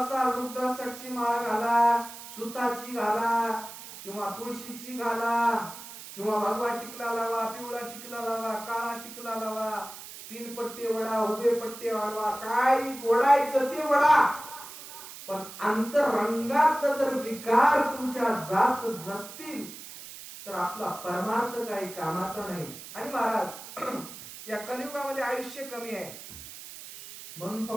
रुद्राक्षाची माळ घाला, सुताची घाला, किंवा तुळशीची घाला, किंवा भगवा टिकला लावा, पिवळा टिकला लावा, काळा टिकला लावा, 3 पट्टे वडा, उभे पट्टे वाढवा, काय ओढायचं ते वडा. पण अंतरंगात जर विकार तुमच्या जात नसतील, तर आपला परमार्थ काही कामाचा नाही. आणि महाराज या कलियुगामध्ये आयुष्य कमी आहे म्हणून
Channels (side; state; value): right; noise; hiss, 13 dB below the sound